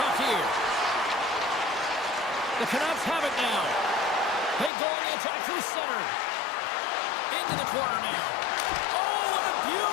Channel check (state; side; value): drops out; right; at 4.7 s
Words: here. The Canucks have it now. They go on the attack through center. Into the corner now. Oh, what a